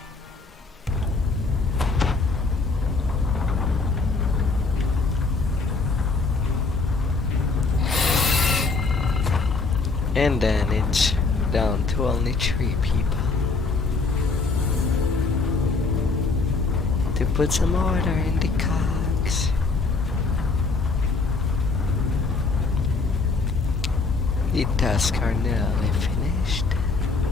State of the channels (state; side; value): quieter; right; 4.0 dB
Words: And then it's down to only 3 people. To put some order in the cogs. The tasks are nearly finished.